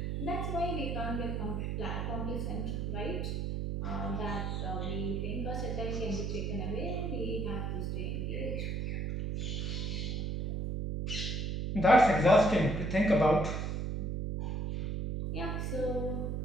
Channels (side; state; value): right; noise; hum, 1 dB below the sound